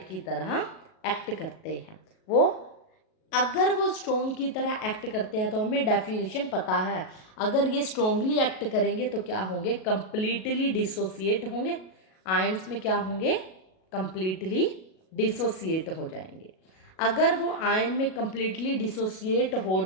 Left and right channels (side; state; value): right; late; 37 ms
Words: की तरह एक्ट करते हैं। वो अगर वो स्ट्रोंग की तरह एक्ट करते हैं तो हमें डेफिनेशन पता है, अगर ये स्ट्रोंगली एक्ट करेंगे तो क्या होंगे, कंप्लीटली डिसोसिएट होंगे। आयंस में क्या होंगे, कंप्लीटली डिसोसिएट हो जाएंगे। अगर वो आयन में कंप्लीटली डिसोसिएट हो